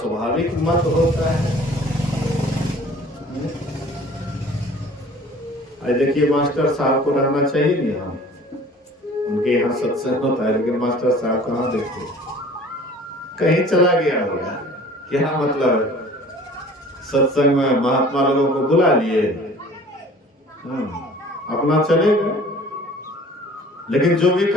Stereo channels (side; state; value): both; normal; correlation 0.48